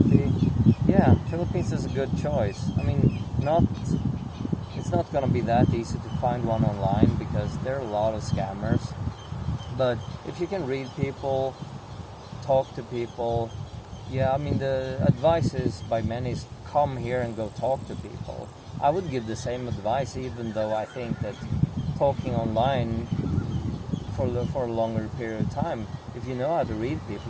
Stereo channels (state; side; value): identical; both; correlation 1.00